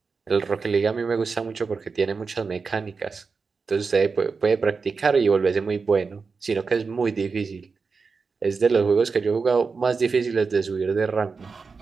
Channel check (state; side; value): quieter; left; 4.8 dB